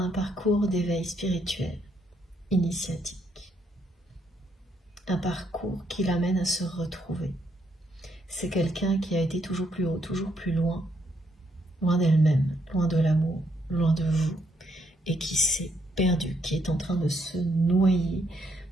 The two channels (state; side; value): normal; both; correlation 0.74